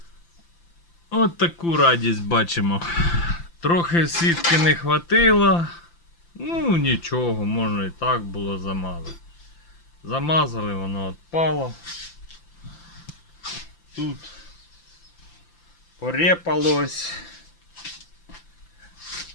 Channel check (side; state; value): right; late; 5.9 ms